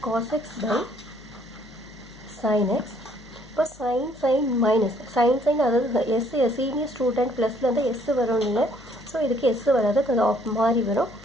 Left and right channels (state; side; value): noise; left; hum, 22 dB below the sound